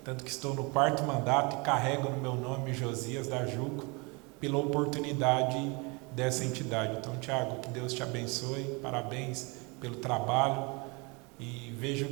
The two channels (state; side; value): quieter; left; 29.0 dB